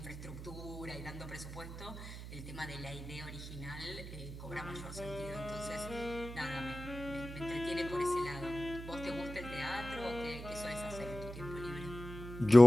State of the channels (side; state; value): right; noise; hum, 10 dB below the sound